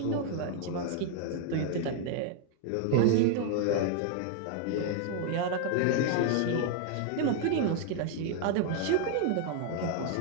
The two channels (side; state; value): both; different; correlation 0.00